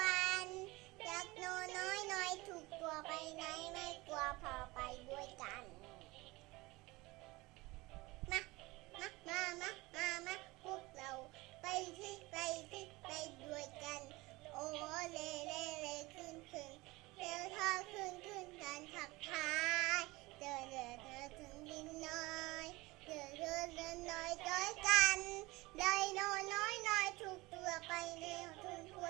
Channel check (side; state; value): left; quieter; 21.8 dB